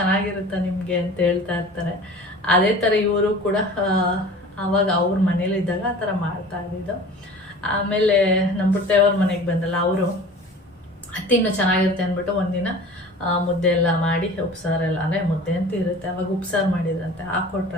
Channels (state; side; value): normal; both; correlation 0.41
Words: ನಿಮಗೆ ಅಂತ ಹೇಳ್ತಾ ಇರ್ತಾರೆ. ಅದೇ ಥರ ಇವರು ಕೂಡ ಆವಾಗ ಅವ್ರ ಮನೇಲಿದ್ದಾಗ ಆ ಥರ ಮಾಡ್ತಾ ಇದ್ದಿದ್ದು. ಆಮೇಲೆ ನಮ್ಮ ಪುಟ್ಟವ್ರ ಮನೆಗೆ ಬಂದಲ್ಲ, ಅವರು ತಿನ್ನು ಚೆನ್ನಾಗಿರುತ್ತೆ ಅಂದ್ಬಿಟ್ಟು ಒಂದಿನ ಮುದ್ದೆ ಎಲ್ಲ ಮಾಡಿ ಉಪ್ಸಾರೆಲ್ಲ, ಅಂದರೆ ಮುದ್ದೆ ಅಂತ ಇರುತ್ತೆ ಅವಾಗ ಉಪ್ಸಾರು ಮಾಡಿದ್ರಂತೆ,